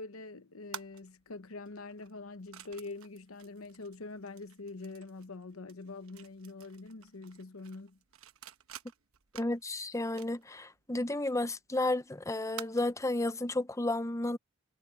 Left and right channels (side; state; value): both; normal; correlation 0.70